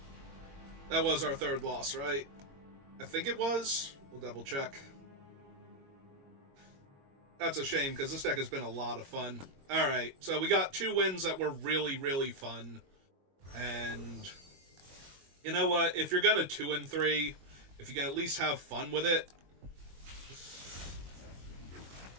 That was our 3rd loss, right? I think it was. We'll double check. That's a shame, because this deck has been a lot of fun. Alright, so we got 2 wins that were really, really fun. And you know what? If you're gonna 2 and 3, if you can at least have fun with it.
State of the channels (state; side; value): late; left; 22 ms